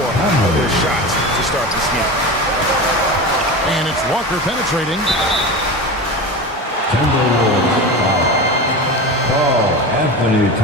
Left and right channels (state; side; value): normal; both; correlation 0.27